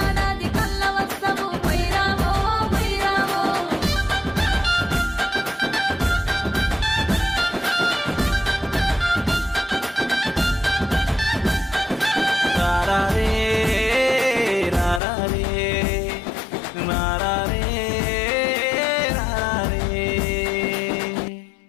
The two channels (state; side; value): drops out; right; at 15.0 s